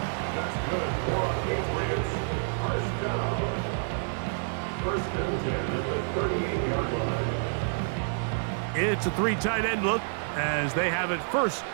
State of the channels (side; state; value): left; silent; digital silence